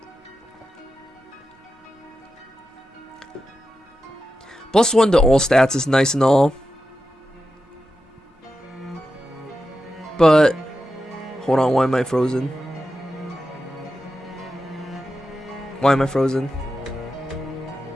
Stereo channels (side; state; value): both; normal; correlation 0.90